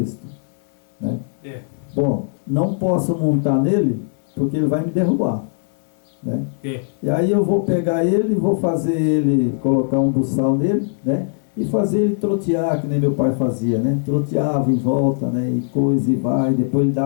né? Bom, não posso montar nele, porque ele vai me derrubar, né? E aí eu vou pegar ele, vou fazer ele, colocar um buçal nele, né? E fazer ele trotear, que nem meu pai fazia, né? Troteava em volta, né? E coisa e vai, depois ele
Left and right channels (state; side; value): silent; right; digital silence